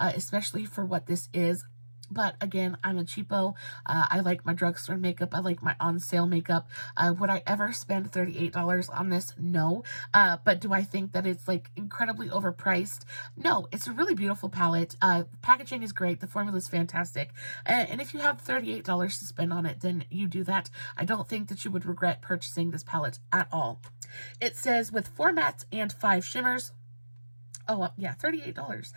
for what this is. But again, I'm a cheapo. I like my drugstore makeup. I like my on-sale makeup. Would I ever spend $38 on this? No. But do I think that it's like incredibly overpriced? No. It's a really beautiful palette. Packaging is great. The formula is fantastic. And if you have $38 to spend on it, then you do that. I don't think that you would regret purchasing this palette at all. It says with 4 mattes and 5 shimmers. Oh, yeah, $38.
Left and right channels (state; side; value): inverted; both; correlation -1.00